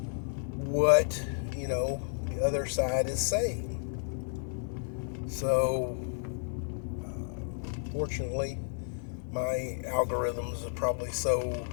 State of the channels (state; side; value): silent; right; digital silence